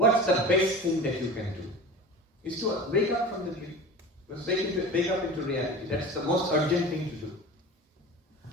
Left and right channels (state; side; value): normal; both; correlation 0.35